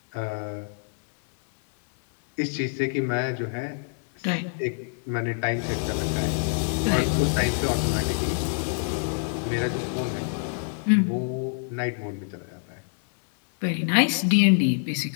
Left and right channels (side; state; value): right; silent; digital silence